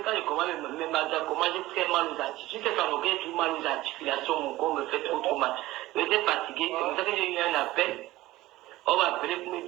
je commence mes magasins, j'ai très mal aux articulations. Je sais qu'en aucun tout mal aux articulations, mon corps me fait trop mal. J'étais fatigué, c'est pour ça que j'ai eu un appel. On m'a appelé pour me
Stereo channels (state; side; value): quieter; left; 17.3 dB